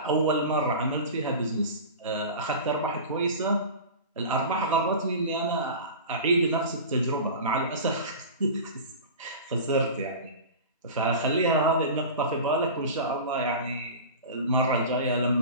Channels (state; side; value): inverted; both; correlation -0.33